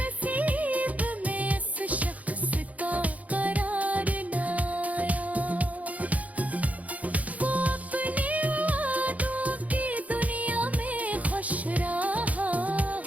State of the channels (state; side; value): late; left; 0.071 ms